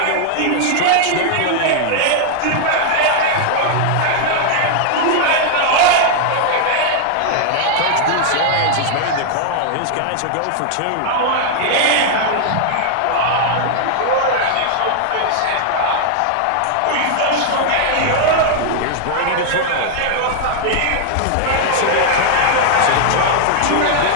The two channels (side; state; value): both; different; correlation 0.00